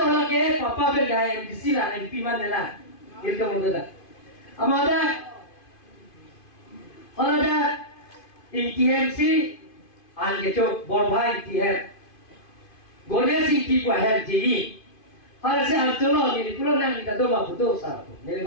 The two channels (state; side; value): late; right; 2.5 ms